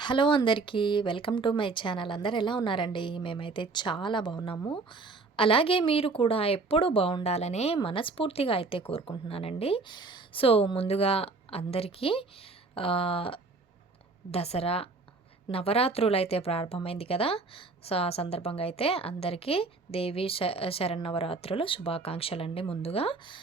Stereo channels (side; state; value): left; quieter; 3.8 dB